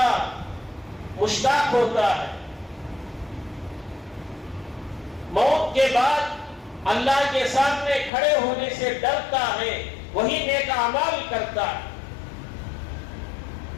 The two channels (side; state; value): right; drops out; at 8.1 s